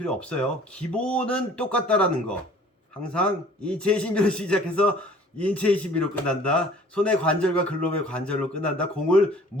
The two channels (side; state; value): both; normal; correlation 0.52